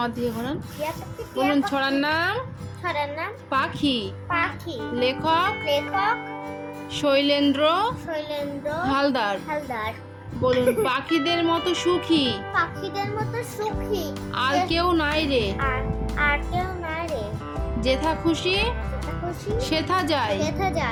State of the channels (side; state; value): both; identical; correlation 1.00